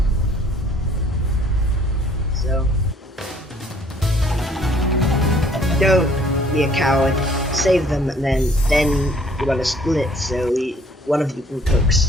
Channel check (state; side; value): normal; both; correlation 0.59